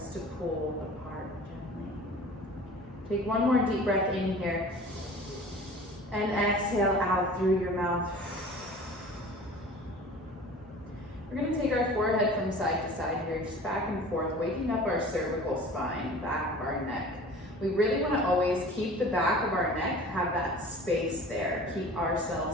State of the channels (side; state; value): both; normal; correlation 0.42